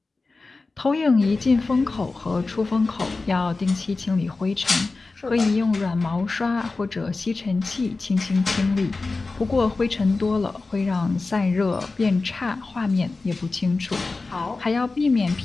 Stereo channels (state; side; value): quieter; right; 3.7 dB